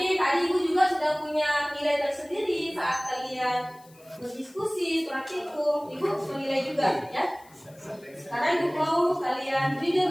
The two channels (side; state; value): left; noise; hiss, 27 dB below the sound